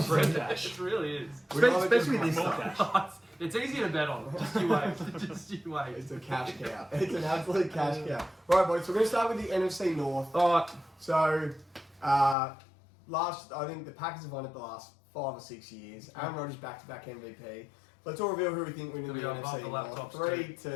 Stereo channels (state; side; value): drops out; right; at 12.4 s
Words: stuff. free cash. It really is. We love it just Especially this more stuff. It's easy to bet on. Just you wait. Just you wait. It's a cash cow. It's an absolute cash cow. Right, boys. So we're going to start with the NFC North. All right. So, I think the Packers have won it the last 5 or 6 years. Aaron Rodgers back-to-back MVP. Let's all reveal who we think wins the Gotta go above NFC the North. laptops